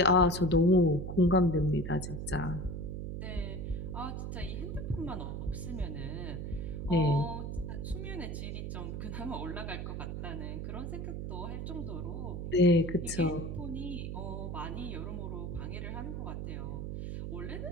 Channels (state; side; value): noise; right; hum, 5 dB below the sound